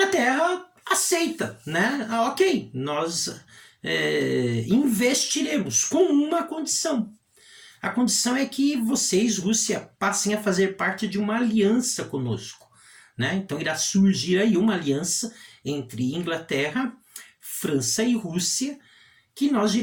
aceita, né? Ok, nós investiremos com uma condição. A condição é que vocês, Rússia, passem a fazer parte de uma aliança conosco, né? Então irá surgir aí uma aliança entre Inglaterra, França e Rússia, que nós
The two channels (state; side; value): identical; both; correlation 1.00